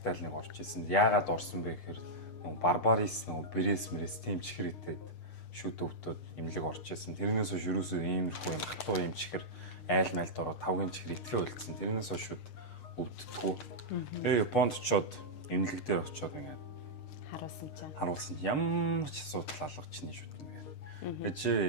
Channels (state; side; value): late; right; 6.6 ms